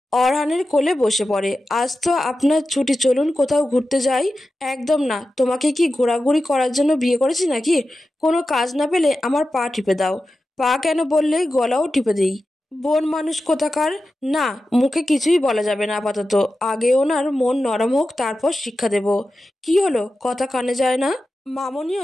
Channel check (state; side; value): normal; both; correlation 0.92